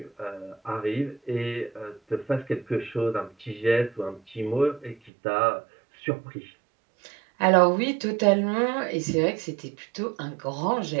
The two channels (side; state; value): left; drops out; at 5.1 s